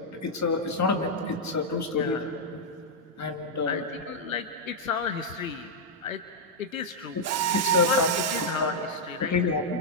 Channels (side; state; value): both; normal; correlation -0.05